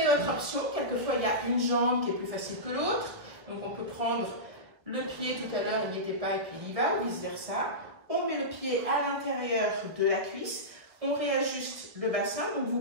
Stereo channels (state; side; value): late; left; 1.3 ms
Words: votre option. Quelquefois, il y a une jambe qui est plus facile que l'autre. Donc, on peut prendre le pied tout à l'heure, il n'y était pas, et puis il y va, ou vice-versa. On met le pied à l'intérieur de la cuisse. On réajuste le bassin. Donc,